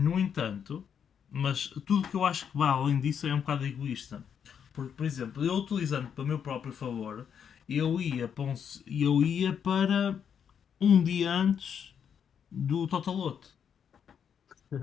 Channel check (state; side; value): quieter; right; 7.8 dB